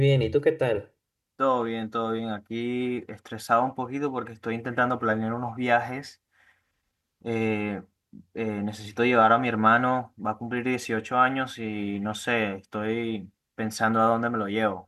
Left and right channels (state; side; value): identical; both; correlation 1.00